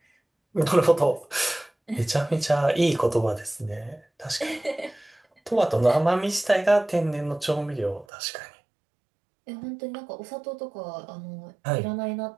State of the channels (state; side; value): drops out; left; at 8.1 s